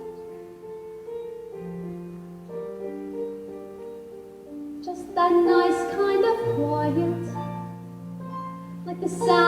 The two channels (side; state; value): both; identical; correlation 1.00